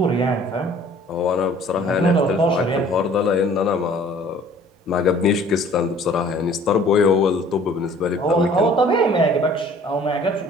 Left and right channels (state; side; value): normal; both; correlation 0.53